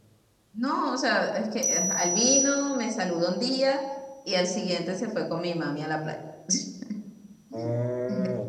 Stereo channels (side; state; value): both; identical; correlation 1.00